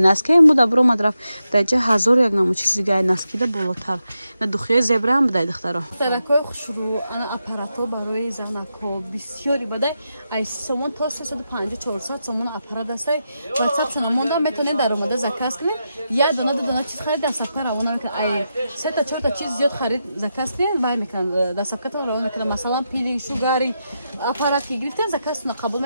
این بود برو مدرف درجه 1001 نمو چیز دیگه نسکی ده بالاتر نه دوخیه زبره هم بده دخترا دخترکای خوشرو انا اپاراتو برای زنکو بسیاری بده ای سومون تا 350 400 سومون اپارات است واتساپ سنموندا میتونین در اومده زکاس کنین یا دونه چیز خرید دستافکا روانه میکنه ای 3 تا 4 تا چیز زیاد خرید زکاس کنین وای میکنه دستافکا تو روانه میکنه مثلا پیلی شوگاری اپارات کی گرفتین زکاس قبول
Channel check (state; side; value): inverted; both; correlation -0.87